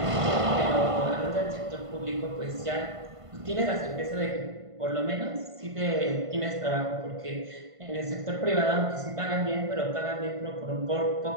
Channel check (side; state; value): left; late; 1.5 ms